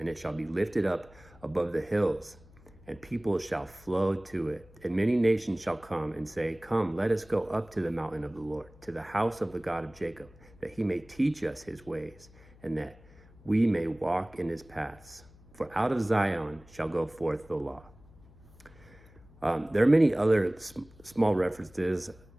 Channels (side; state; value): left; noise; hum, 24 dB below the sound